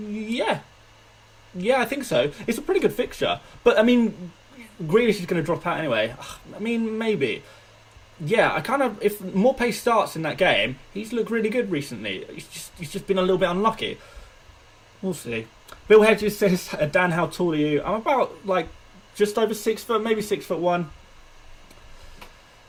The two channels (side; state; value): both; identical; correlation 1.00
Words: Yeah, I think so. It's a pretty good fixture. But, I mean, Grealish is going to drop out anyway. I mean, maybe. Yeah, if Morpay starts in that game, he's looked really good recently. He's just been a little bit unlucky. We'll see. Bill Hedges says, Dan, how tall are you? I'm about, just over 6 foot, maybe 6'1".